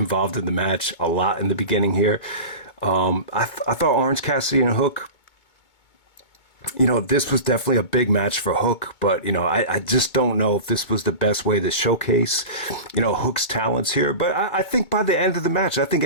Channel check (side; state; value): right; late; 2.2 ms